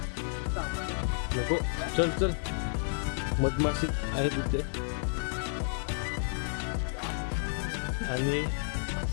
नको चल चल मधमाशी आहे तिथे. आणि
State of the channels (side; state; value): right; silent; digital silence